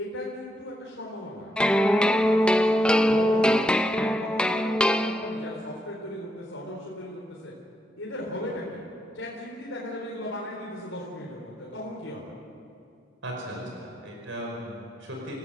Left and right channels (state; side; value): normal; both; correlation 0.81